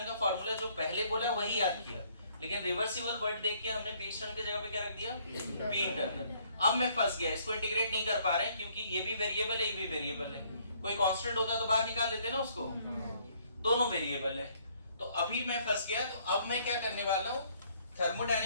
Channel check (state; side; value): inverted; both; correlation -0.64